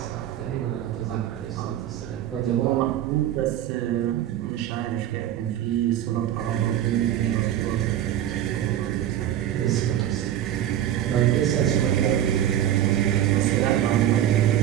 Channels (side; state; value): left; quieter; 11.6 dB